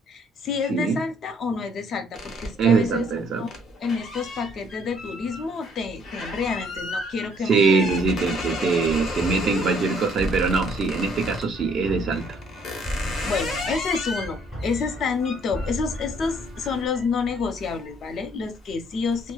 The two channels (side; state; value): both; normal; correlation 0.63